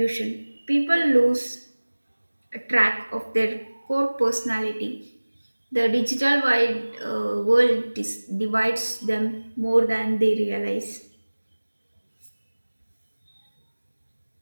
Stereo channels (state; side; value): inverted; both; correlation -1.00